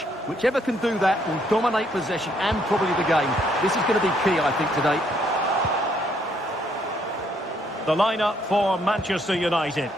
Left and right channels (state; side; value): normal; both; correlation 0.70